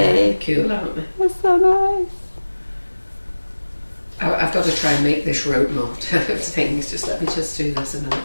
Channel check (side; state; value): both; inverted; correlation -1.00